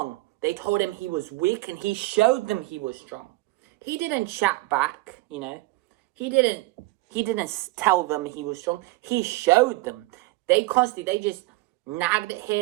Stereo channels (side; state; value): left; quieter; 21.1 dB